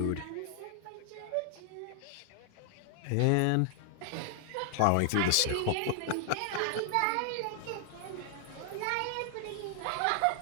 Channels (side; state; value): both; different; correlation 0.00